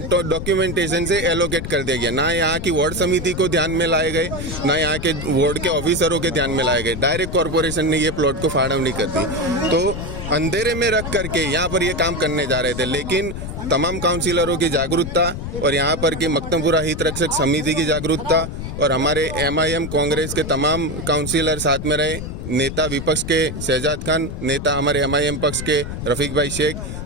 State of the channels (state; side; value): noise; left; rumble, 7 dB below the sound